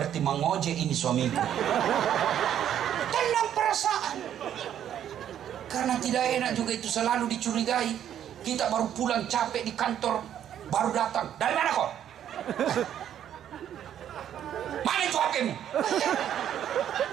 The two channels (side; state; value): left; quieter; 10.2 dB